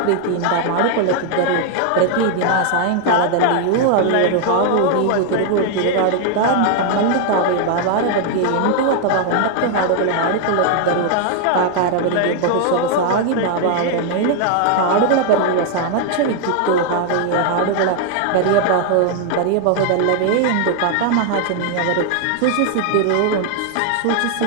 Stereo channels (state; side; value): different; both; correlation 0.00